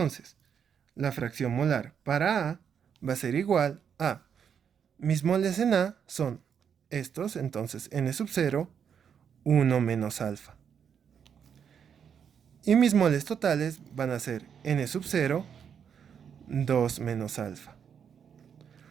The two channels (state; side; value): quieter; left; 7.6 dB